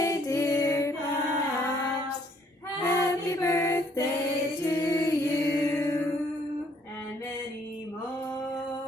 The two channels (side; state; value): both; normal; correlation 0.65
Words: dear Pops. Happy birthday to you. And many